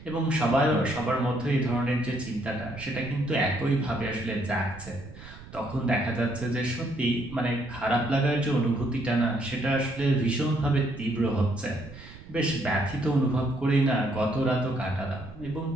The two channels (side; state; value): right; noise; rumble, 17 dB below the sound